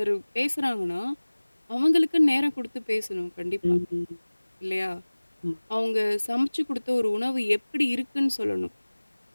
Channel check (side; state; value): both; inverted; correlation -1.00